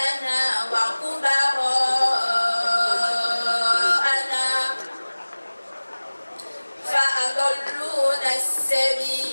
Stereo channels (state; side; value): inverted; both; correlation -1.00